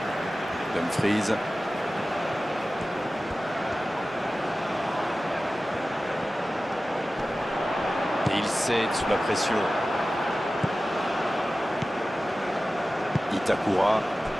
Dumfries. Et il cède sous la pression. Itakura.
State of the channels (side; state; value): both; normal; correlation 0.95